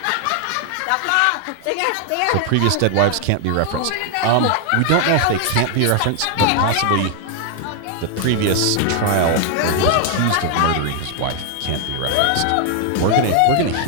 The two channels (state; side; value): different; both; correlation 0.00